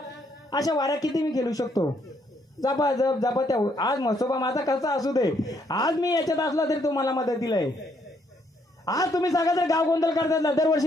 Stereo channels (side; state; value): both; normal; correlation 0.71